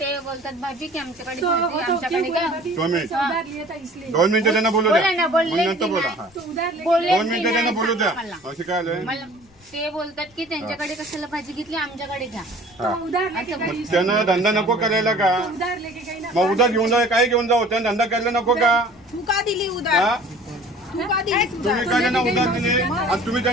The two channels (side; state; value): left; noise; rumble, 29 dB below the sound